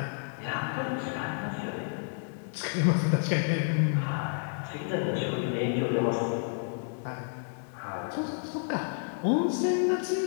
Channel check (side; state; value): right; silent; digital silence